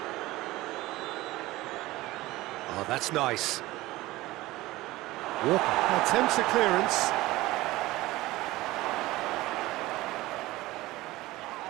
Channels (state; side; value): quieter; left; 18.5 dB